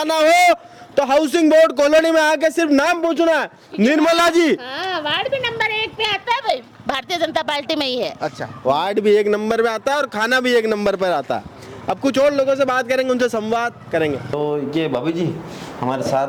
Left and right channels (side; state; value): both; identical; correlation 1.00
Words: हो तो हाउसिंग बोर्ड कॉलोनी में आके सिर्फ नाम पूछना है। निर्मला जी वार्ड भी नंबर 1 पे आता है भाई, भारतीय जनता पार्टी में ही है। अच्छा, वार्ड भी 1 नंबर पे आता है और खाना भी 1 नंबर पर आता है। अब कुछ और लोगों से बात करेंगे, उनसे संवाद करेंगे। तो ये भाभी जी हमारे